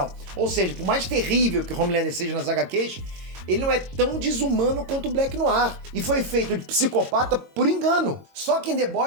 Ou seja, por mais terrível que o Homelander seja nas HQs, ele não é tão desumano quanto o Black Noir. E foi feito de psicopata por engano. Só que em The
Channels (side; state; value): left; late; 22 ms